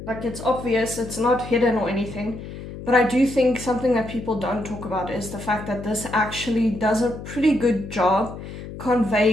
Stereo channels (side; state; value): left; noise; hum, 11 dB below the sound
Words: like it's obvious, it's not hidden or anything. But I do think something that people don't talk about is the fact that this actually does a pretty good job